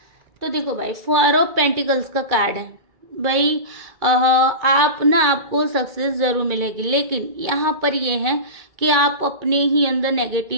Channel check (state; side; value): late; left; 2.3 ms